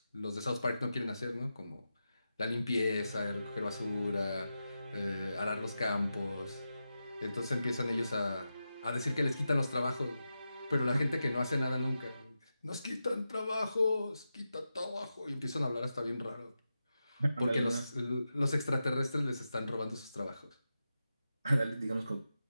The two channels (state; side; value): inverted; both; correlation -0.90